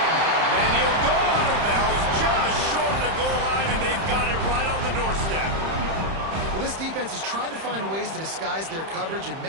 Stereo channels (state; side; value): late; left; 31 ms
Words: And he'll go out of bounds just short of the goal line, and they've got it right on the doorstep. Well, this defense has tried to find ways to disguise their coverage and